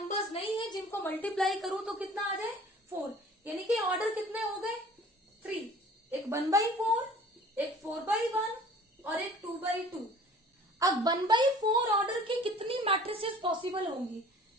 नहीं है जिनको मल्टीप्लाई करूं तो कितना आ जाए? 4। यानी कि ऑर्डर कितने हो गए? 3। एक 1/4, एक 4/1 और एक 2/2। अब 1/4 ऑर्डर की कितनी मैट्रिसेस पॉसिबल होंगी?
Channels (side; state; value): both; normal; correlation 0.48